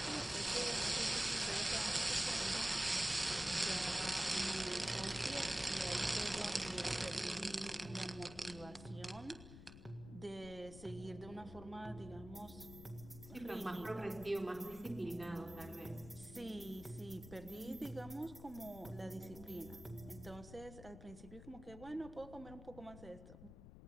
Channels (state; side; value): noise; left; rumble, 14 dB below the sound